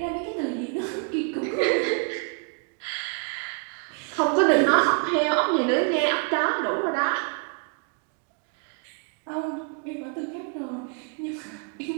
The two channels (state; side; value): quieter; left; 35.7 dB